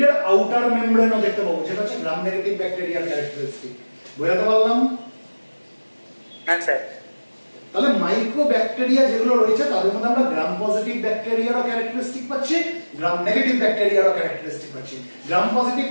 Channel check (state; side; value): inverted; both; correlation -1.00